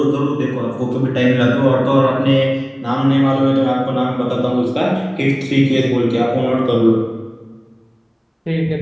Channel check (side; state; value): both; identical; correlation 1.00